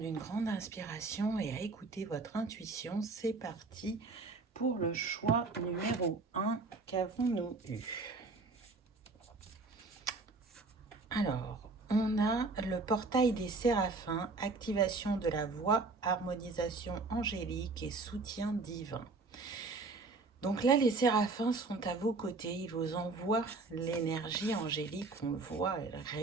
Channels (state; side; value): quieter; left; 3.8 dB